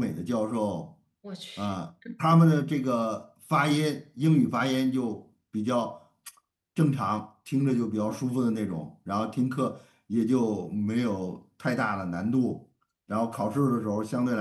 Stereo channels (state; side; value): identical; both; correlation 1.00